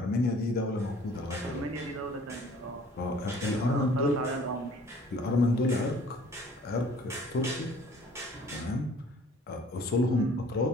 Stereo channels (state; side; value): normal; both; correlation 0.53